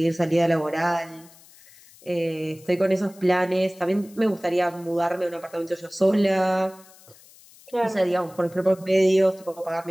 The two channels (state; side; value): noise; left; hiss, 24 dB below the sound